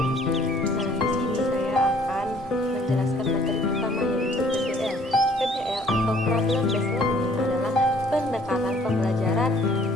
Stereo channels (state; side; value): normal; both; correlation 0.58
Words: Nah, di sini saya akan menjelaskan materi pertama, yaitu PBL. PBL atau Problem Based Learning adalah pendekatan pembelajaran